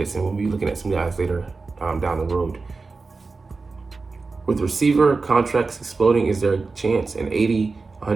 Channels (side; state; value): left; quieter; 4.1 dB